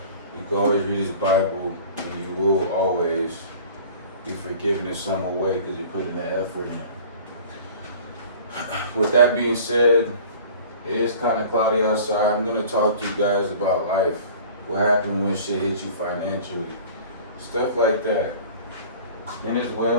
you can always read this Bible and you will always be forgiven in some way because you put in the effort in. With that being said, it is kind of cloudy outside. I'm going to talk to you guys about life. What happened when shit hit you financially. Stuff like that. And as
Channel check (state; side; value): inverted; both; correlation -0.44